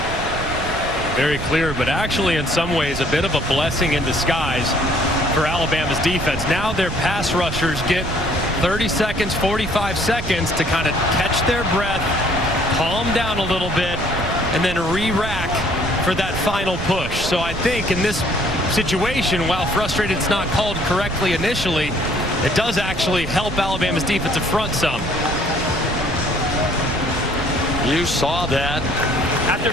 Very clear, but actually in some ways a bit of a blessing in disguise for Alabama's defense. Now their pass rushers get 30 seconds, 45 seconds to kind of catch their breath, calm down a little bit, and then re-rack for that final push. So I think in this situation, while frustrated it's not called correctly initially, it does actually help Alabama's defensive front some. You saw that. After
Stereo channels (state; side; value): noise; right; rumble, 7 dB below the sound